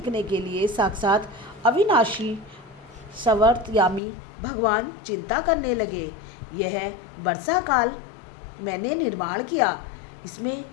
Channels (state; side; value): drops out; right; at 4.0 s